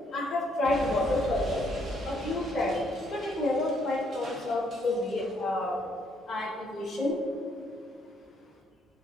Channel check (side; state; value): both; normal; correlation 0.70